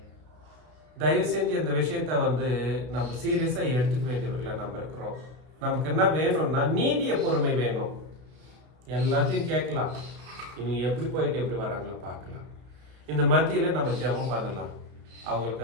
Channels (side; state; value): left; late; 32 ms